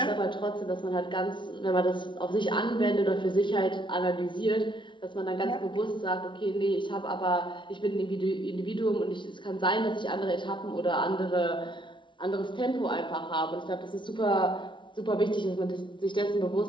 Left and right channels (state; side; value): late; right; 0.24 ms